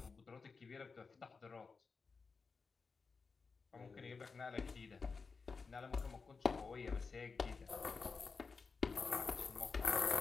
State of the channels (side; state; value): right; quieter; 4.8 dB